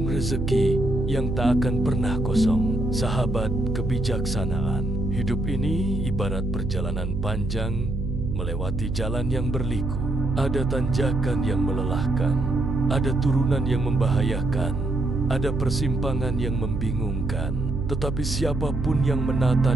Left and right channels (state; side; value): noise; right; hum, 3 dB below the sound